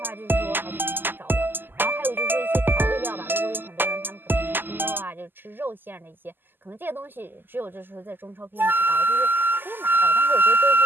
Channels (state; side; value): late; left; 0.094 ms